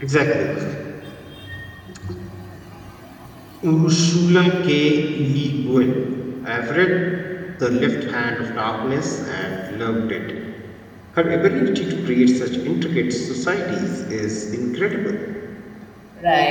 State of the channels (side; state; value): both; identical; correlation 1.00